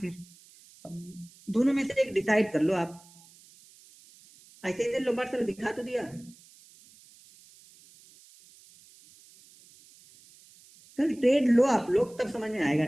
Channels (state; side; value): noise; right; hiss, 25 dB below the sound